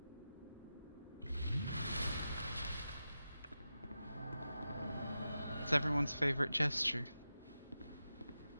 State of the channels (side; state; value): both; inverted; correlation -0.91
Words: It's everyone's favorite gesture.